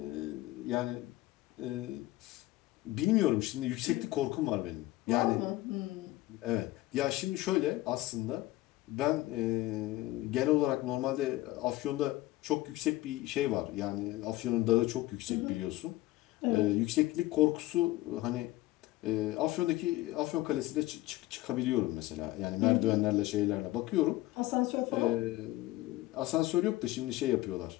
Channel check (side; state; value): right; quieter; 17.7 dB